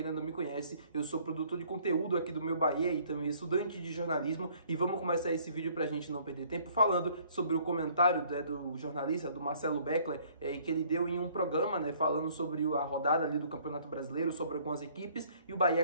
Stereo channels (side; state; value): both; inverted; correlation -0.59